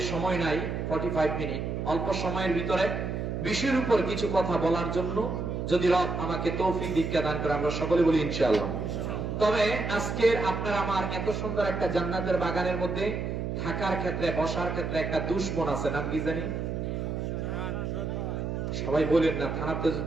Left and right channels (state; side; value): noise; right; hum, 3 dB below the sound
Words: সময় নাই, 45 মিনিট, অল্প সময়ের ভিতরে বিষয়ের উপর কিছু কথা বলার জন্য, যদি রব আমাকে তৌফিক দীক্ষা দান করে, আমরা সকলে বলি ইনশাআল্লাহ। তবে আজকের আপনার আমার এত সুন্দর একটা জান্নাতের বাগানের মধ্যে থাকার ক্ষেত্রে, বসার ক্ষেত্রে একটা দুশমন আছে, নাম কি জানি? সবাই বলেন না, থানাতে